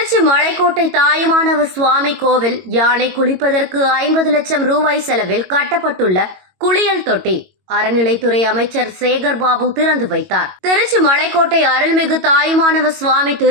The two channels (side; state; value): left; late; 22 ms